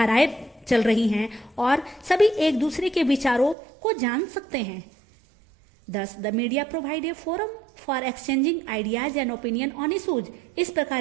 चल रही हैं और सभी एक दूसरे के विचारों को जान सकते हैं। Thus, the media provide a forum for exchanging ideas and opinion on issues. इस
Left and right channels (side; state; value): left; drops out; at 3.6 s